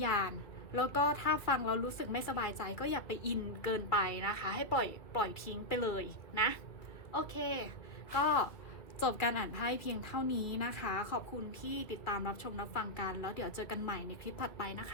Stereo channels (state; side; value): late; right; 1.9 ms